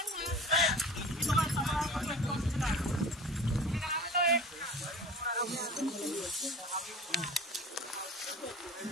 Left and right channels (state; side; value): normal; both; correlation 0.39